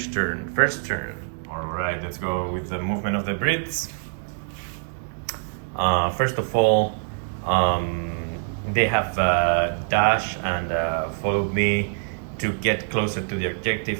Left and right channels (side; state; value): left; silent; digital silence